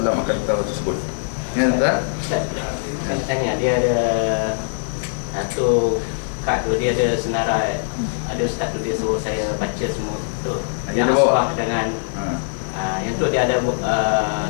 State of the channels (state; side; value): silent; right; digital silence